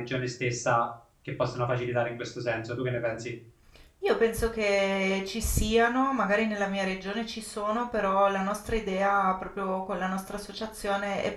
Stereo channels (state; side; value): identical; both; correlation 1.00